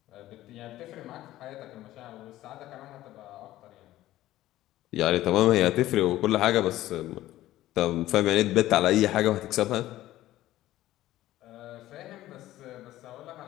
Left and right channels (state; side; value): quieter; right; 15.0 dB